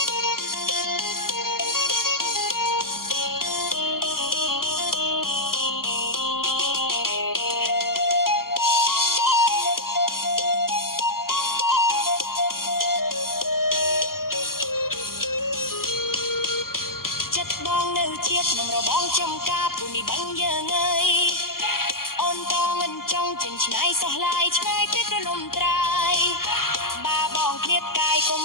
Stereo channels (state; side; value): late; right; 0.92 ms